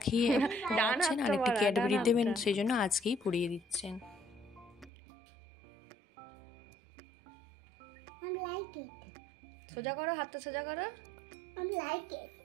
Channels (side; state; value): left; drops out; at 4.9 s